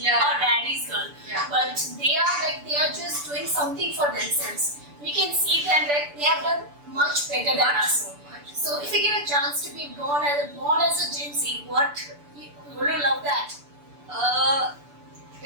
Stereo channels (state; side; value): late; left; 6.9 ms